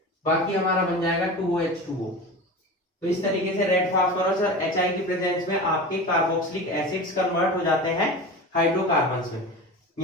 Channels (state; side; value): normal; both; correlation 0.31